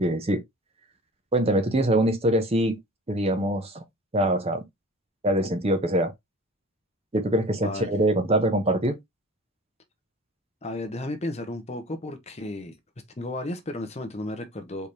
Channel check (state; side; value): normal; both; correlation 0.42